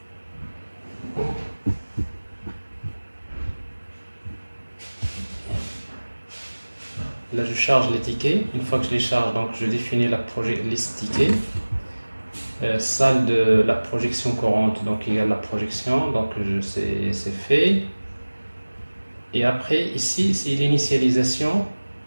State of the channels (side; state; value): both; inverted; correlation -1.00